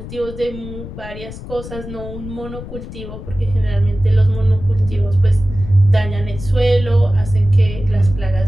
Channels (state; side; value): noise; left; rumble, 11 dB below the sound